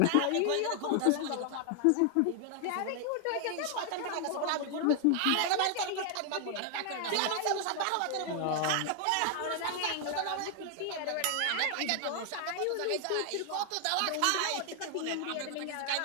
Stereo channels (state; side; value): different; both; correlation 0.00